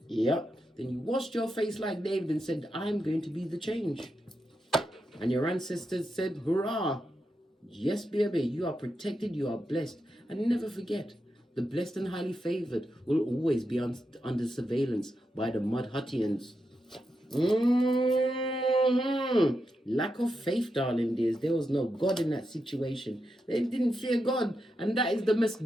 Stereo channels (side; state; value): both; normal; correlation 0.86